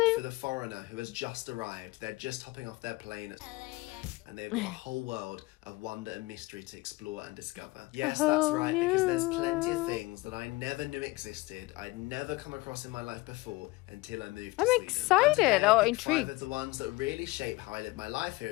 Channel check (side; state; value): right; quieter; 22.1 dB